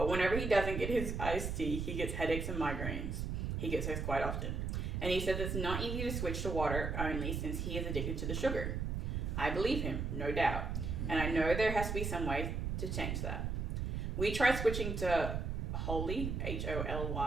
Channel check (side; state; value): right; noise; rumble, 2 dB below the sound